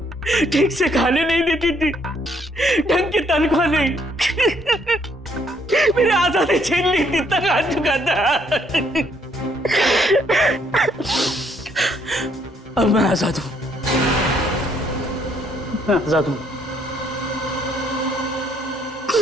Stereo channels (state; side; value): normal; both; correlation 0.68